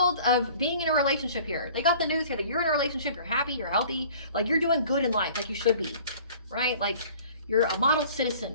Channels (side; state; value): both; inverted; correlation -0.49